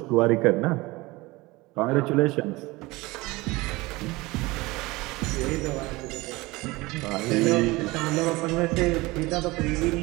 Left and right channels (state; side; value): quieter; left; 21.8 dB